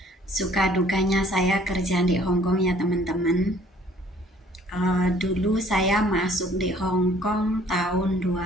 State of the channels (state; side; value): normal; both; correlation 0.57